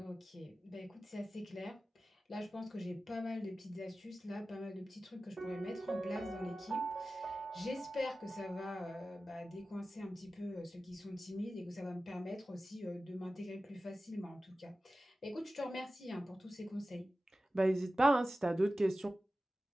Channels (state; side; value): normal; both; correlation 0.95